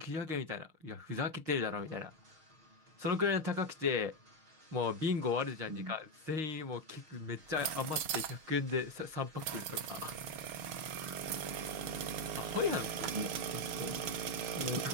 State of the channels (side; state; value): left; late; 6.4 ms